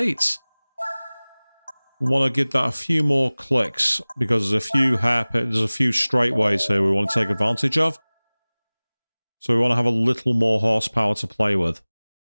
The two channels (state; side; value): inverted; both; correlation -1.00